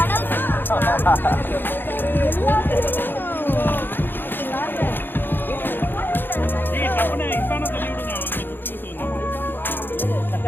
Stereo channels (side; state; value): right; late; 0.097 ms